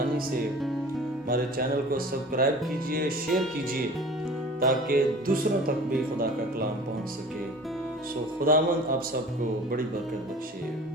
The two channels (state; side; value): normal; both; correlation 0.42